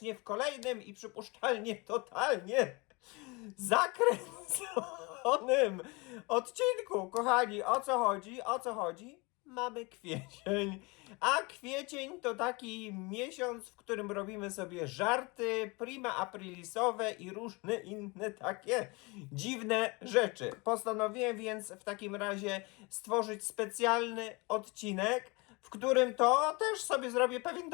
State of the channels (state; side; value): quieter; right; 26.9 dB